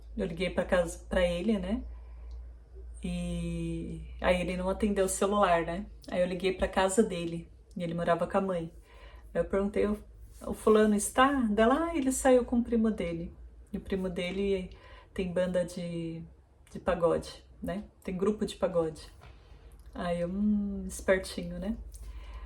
liguei para casa para ele, né? E aí ele não atendeu o celular, né? Aí eu liguei para casa dele e ele morava com a mãe. Aí eu perguntei, o fulano está? Dela, ele saiu com o primo dele. E o primo dele tem banda de pagode, né? Tem grupo de pagode. Aí eu, espertinho, né?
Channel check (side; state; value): both; identical; correlation 1.00